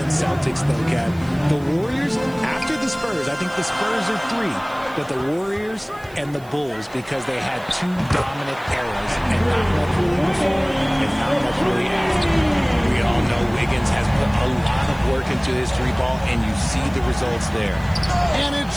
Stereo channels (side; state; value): right; noise; hiss, 26 dB below the sound